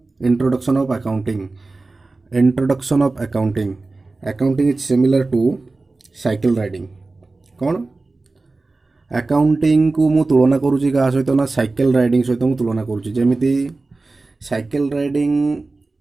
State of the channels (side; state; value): left; quieter; 3.5 dB